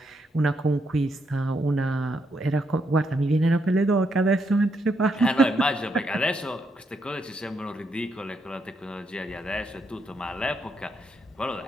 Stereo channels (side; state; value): both; normal; correlation 0.78